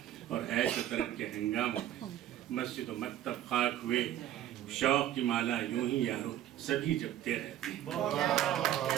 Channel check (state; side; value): quieter; left; 12.2 dB